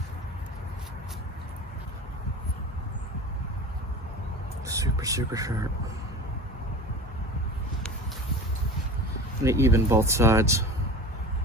Super sharp. I'm gonna even both sides.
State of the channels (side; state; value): both; normal; correlation 0.35